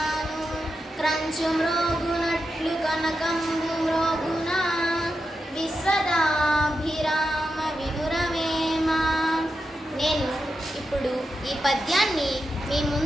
క్రంచు మ్రోగునట్లు కనకంబు మ్రోగున, విశ్వదాభిరామ వినురవేమా. నేను ఇప్పుడు ఈ పద్యాన్ని మీ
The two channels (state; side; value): normal; both; correlation 0.88